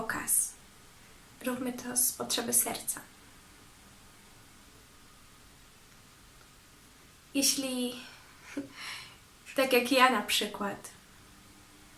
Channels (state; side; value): identical; both; correlation 1.00